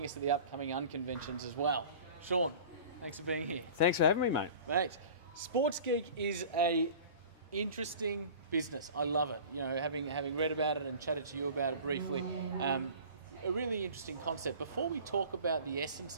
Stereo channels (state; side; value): inverted; both; correlation -0.41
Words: us at the upcoming Unconventions as well. Sean, thanks for being here. Thanks for having me, mate. Mate, Geek is a interesting business. I love it. You know, having read about it and chatted to you about it briefly, a really interesting concept. Before we talk about the